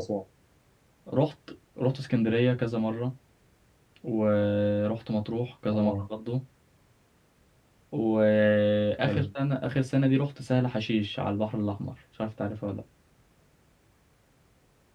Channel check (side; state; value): both; identical; correlation 1.00